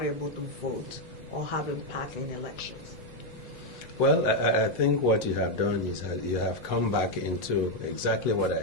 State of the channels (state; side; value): normal; both; correlation 0.03